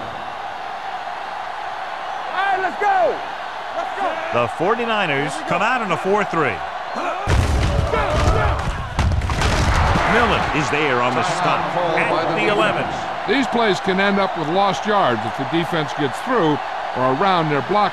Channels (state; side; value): identical; both; correlation 1.00